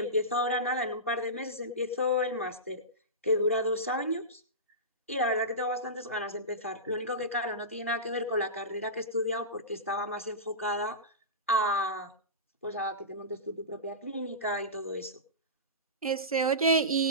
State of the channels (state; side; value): normal; both; correlation -0.20